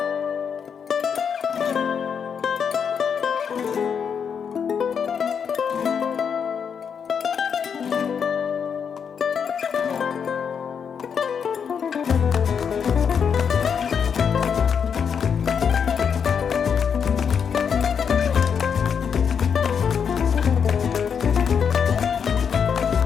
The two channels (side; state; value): right; quieter; 7.0 dB